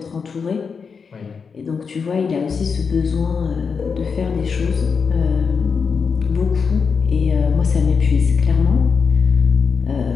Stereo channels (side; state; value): right; quieter; 5.7 dB